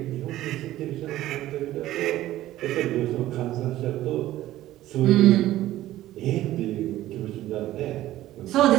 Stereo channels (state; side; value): quieter; left; 14.7 dB